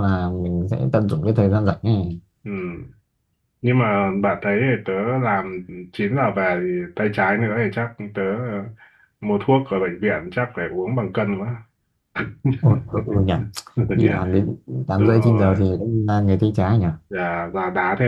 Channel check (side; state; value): both; identical; correlation 1.00